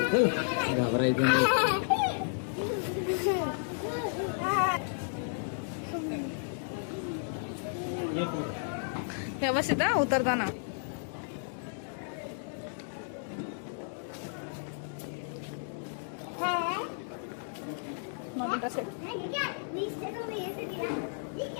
घाबरायचं नाही. व्यवस्थित हा उतरताना. Not interested.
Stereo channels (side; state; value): right; silent; digital silence